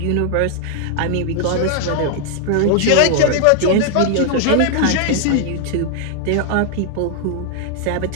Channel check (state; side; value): different; both; correlation 0.00